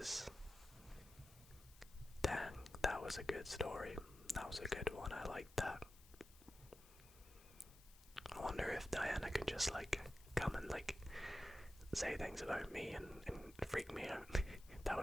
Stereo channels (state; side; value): noise; left; hiss, 22 dB below the sound